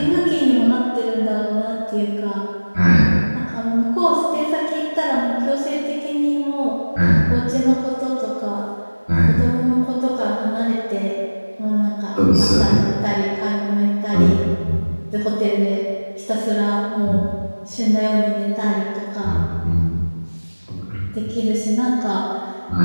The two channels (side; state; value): both; inverted; correlation -1.00